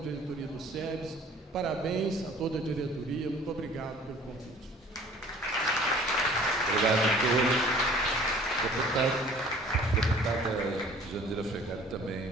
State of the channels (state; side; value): normal; both; correlation 0.50